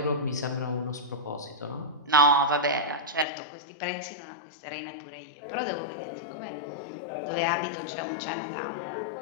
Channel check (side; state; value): right; drops out; at 3.2 s